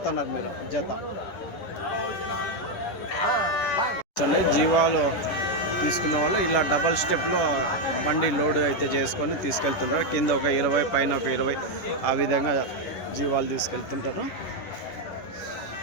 మీరు జత జీవాలు తీసుకున్న వాళ్ళు ఇలా డబల్ స్టెప్లో బండి లోడ్ అయితే చేసుకొని తీసుకెళ్తుంటారు కింద ఒక 20 పైన ఒక 20 ఆ విధంగా జీవాలు తీసుకెళ్తుంటారు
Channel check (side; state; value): right; late; 11 ms